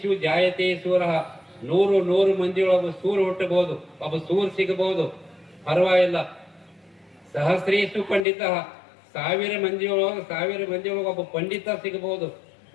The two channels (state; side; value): drops out; right; at 8.2 s